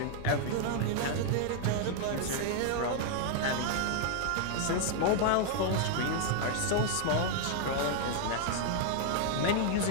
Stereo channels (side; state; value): both; different; correlation 0.00